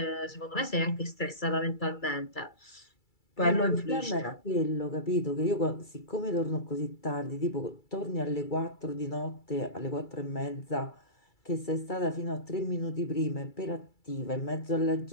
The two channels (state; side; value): late; right; 2.3 ms